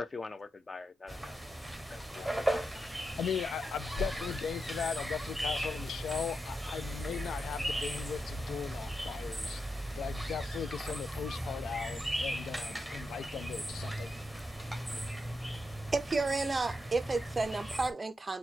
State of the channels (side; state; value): both; normal; correlation 0.86